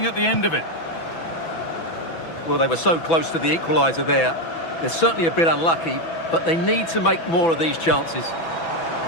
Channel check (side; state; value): right; late; 6.0 ms